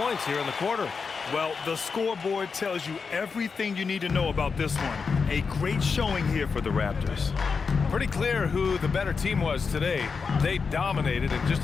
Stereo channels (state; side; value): quieter; right; 5.2 dB